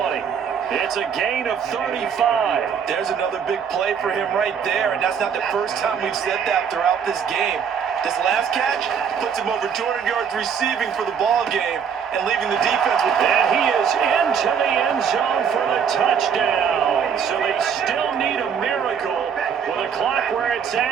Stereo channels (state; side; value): quieter; left; 7.2 dB